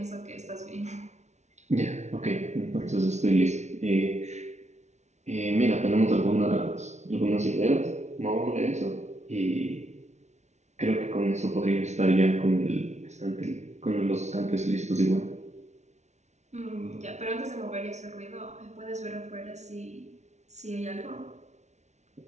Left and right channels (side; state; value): left; late; 0.33 ms